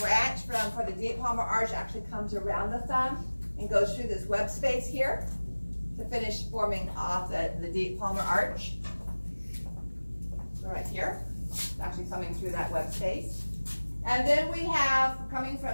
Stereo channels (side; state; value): both; inverted; correlation -1.00